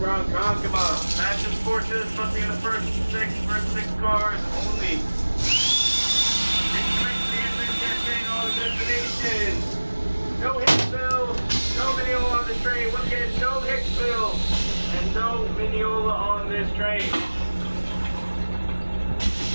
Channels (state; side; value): inverted; both; correlation -1.00